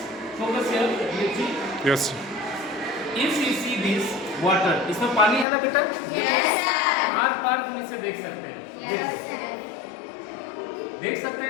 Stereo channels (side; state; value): right; drops out; at 5.5 s